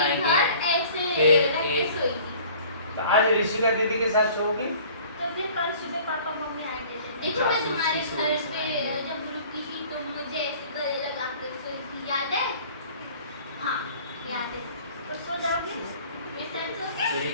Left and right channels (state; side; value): inverted; both; correlation -0.50